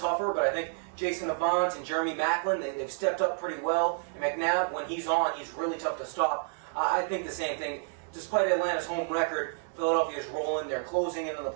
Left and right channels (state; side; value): silent; left; 58 dB below the other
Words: but I think Jason Avant and Jeremy Maclin, they've stepped up pretty well. And McNabb, when he's on, he's really tough to stop. I think the same thing. Despite Atlanta's home record, Philadelphia is rolling. They're closing into the